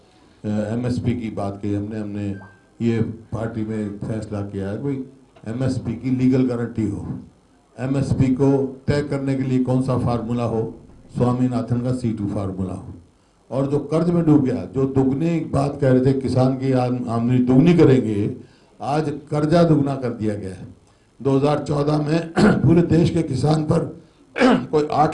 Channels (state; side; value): identical; both; correlation 1.00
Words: एमएसपी की बात की हमने ये पार्टी में फैसला किया है भाई एमएसपी की लीगल गारंटी हो, एमएसपी को तय करने के लिए कौन सा फार्मूला हो, स्वामीनाथन का C2 फार्मूला हो। और जो कर्ज में डूब गया, जो दुगनी बात कह रहे थे किसान की आमदनी दुगनी करेंगे, आज कर्जा दुगना कर दिया गया है। 2014 में पूरे देश के किसान पर कोई